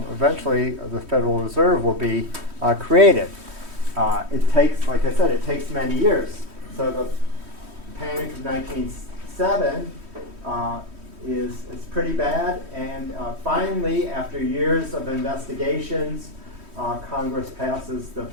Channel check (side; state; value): left; late; 3.1 ms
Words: the Federal Reserve will be created. It takes, like I said, it takes many years. So the Panic of 1907 is pretty bad, and finally, after years of investigations, Congress passes the